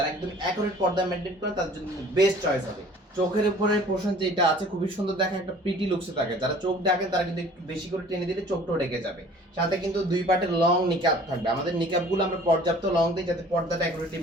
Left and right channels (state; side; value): normal; both; correlation 0.50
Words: একদম অ্যাকুরেট পর্দা মেইনটেইন করেন তাদের জন্য বেস্ট চয়েস হবে। চোখের উপরে পোর্শন যেটা আছে খুবই সুন্দর দেখে, একটা প্রিটি লুকসে থাকে, যারা চোখ ডাকেন তারা কিন্তু একটু বেশি করে টেনে দিলে চোখটাও ঢেকে যাবে। সাথে কিন্তু দুই পার্টের লং নিকাব থাকবে, আমাদের নিকাবগুলো আমরা পর্যাপ্ত লং দিই যাতে পর্দাটা অ্যাকুরেটলি